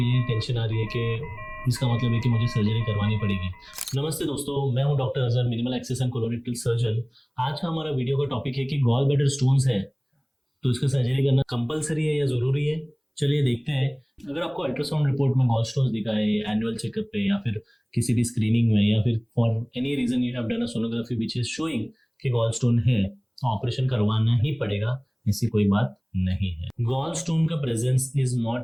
टेंशन आ रही है कि इसका मतलब है कि मुझे सर्जरी करवानी पड़ेगी। नमस्ते दोस्तों, मैं हूं doctor Azhar, minimal access and colorectal surgeon. आज का हमारा वीडियो का टॉपिक है कि गॉल ब्लैडर स्टोन्स है तो इसका सर्जरी करना कंपलसरी है या जरूरी है। चलिए देखते हैं। अगर आपको अल्ट्रासाउंड रिपोर्ट में गॉल स्टोन्स दिखा है एनुअल चेकअप पे या फिर किसी भी स्क्रीनिंग में या फिर for any reason you have done a sonography which is showing कि गॉल स्टोन है, तो ऑपरेशन करवाना ही पड़ेगा, ऐसी कोई बात नहीं है। गॉल स्टोन का presence is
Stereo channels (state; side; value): identical; both; correlation 1.00